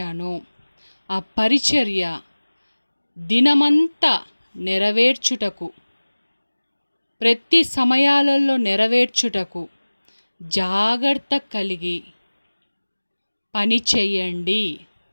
ఆ పరిచర్య దినమంతా నెరవేర్చుటకు, ప్రతి సమయాలలో నెరవేర్చుటకు జాగ్రత్త కలిగి పని చెయ్యండి.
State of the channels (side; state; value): both; inverted; correlation -1.00